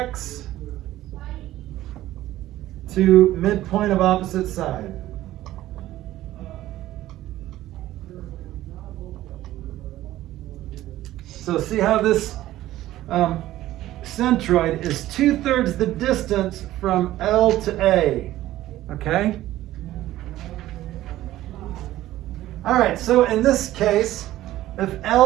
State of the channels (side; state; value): left; quieter; 14.8 dB